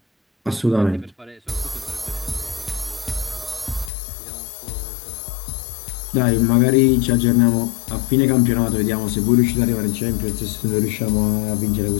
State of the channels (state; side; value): drops out; right; at 3.9 s